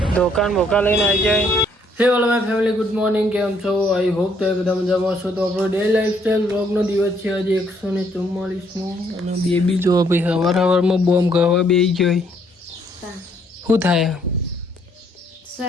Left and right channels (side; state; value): both; normal; correlation 0.68